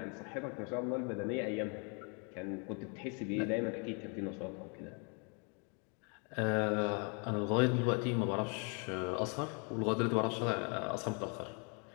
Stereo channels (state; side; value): quieter; right; 36.2 dB